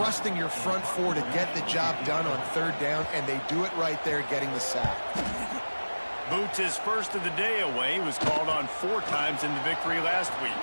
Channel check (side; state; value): both; inverted; correlation -1.00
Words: your front four to get the job done on third down, and they do it right there, getting the sack. Boots his first of the day away. He was called on 4 times in the victory last week.